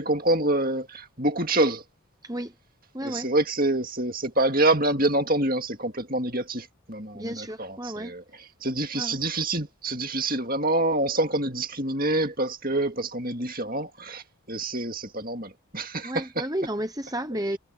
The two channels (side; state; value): both; normal; correlation 0.16